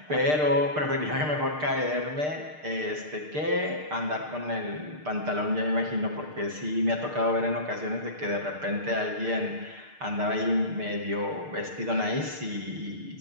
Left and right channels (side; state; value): left; late; 6.6 ms